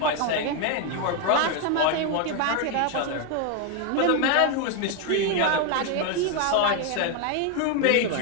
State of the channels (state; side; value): different; both; correlation 0.01